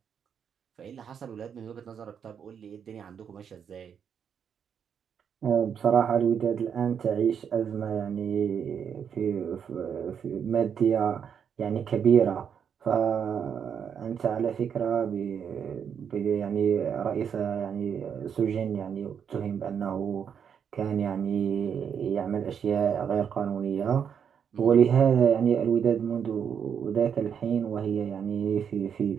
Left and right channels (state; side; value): quieter; left; 7.6 dB